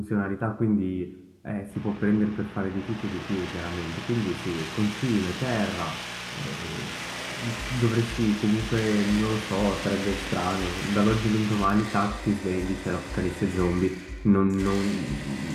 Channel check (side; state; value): both; identical; correlation 1.00